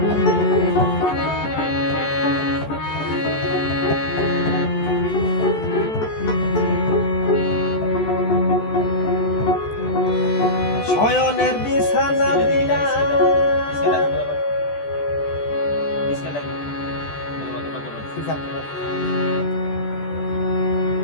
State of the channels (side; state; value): right; late; 14 ms